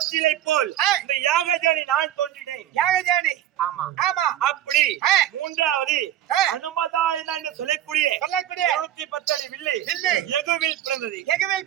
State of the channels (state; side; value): quieter; left; 12.1 dB